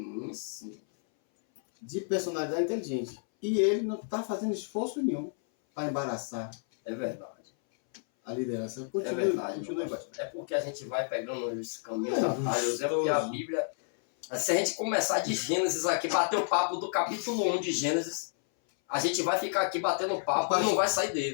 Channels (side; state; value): right; silent; 57 dB below the other